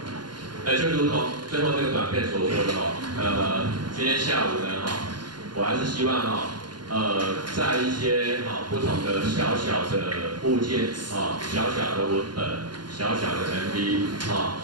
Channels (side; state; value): left; late; 0.71 ms